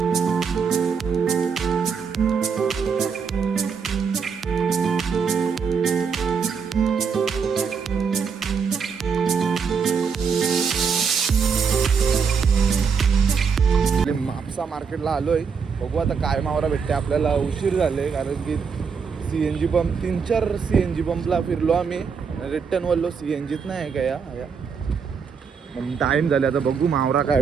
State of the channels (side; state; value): left; quieter; 6.0 dB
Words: म्हापसा मार्केटला आलोय, बघू आता काय मावरा भेटते आपल्याला. उशीर झाले कारण की CNG पंप 3-4 CNG पंपला फिरलो आम्ही. रिटर्न वरलो CNGच नाही आहे का या मग टाईम झाले. आता बघू मावरा काय